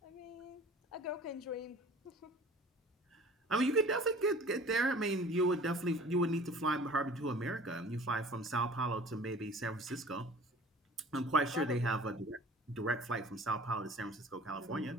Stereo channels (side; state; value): both; normal; correlation 0.46